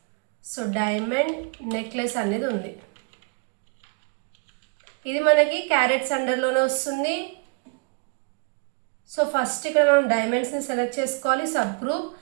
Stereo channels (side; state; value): left; quieter; 33.4 dB